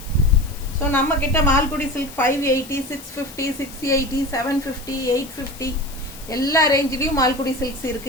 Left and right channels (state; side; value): noise; left; hiss, 17 dB below the sound